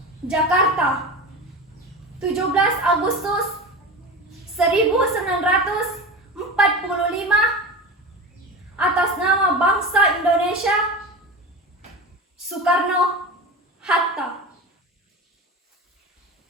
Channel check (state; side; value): normal; both; correlation 0.28